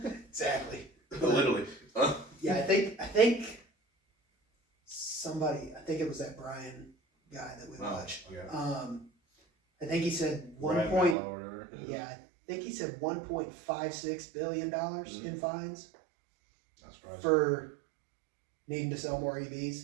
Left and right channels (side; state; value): left; drops out; at 11.2 s